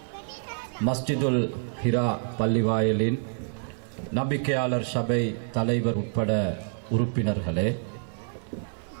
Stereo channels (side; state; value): left; silent; digital silence